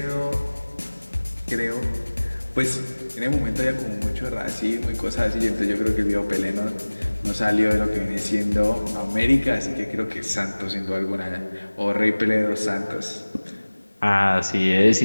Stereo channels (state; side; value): inverted; both; correlation -1.00